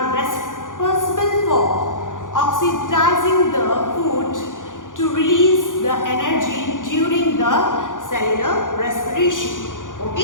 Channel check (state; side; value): late; right; 0.88 ms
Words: responsible for oxidizing the food to release the energy during the cellular respiration.